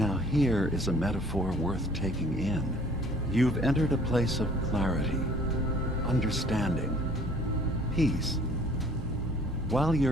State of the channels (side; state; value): both; normal; correlation 0.54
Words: here is a metaphor worth taking in. You've entered a place of clarity, understanding, peace. While